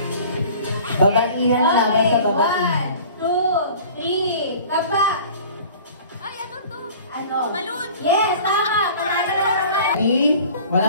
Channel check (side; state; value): both; inverted; correlation -0.45